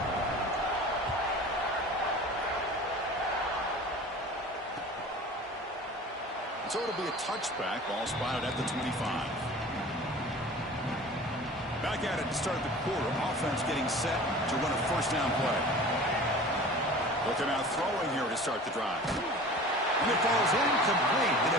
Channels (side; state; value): both; normal; correlation 0.40